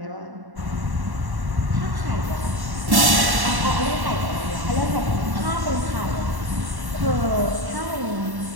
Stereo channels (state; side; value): late; left; 1.1 ms